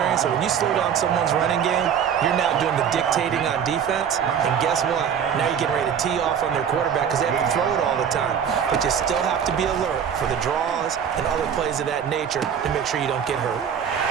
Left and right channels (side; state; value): left; quieter; 8.0 dB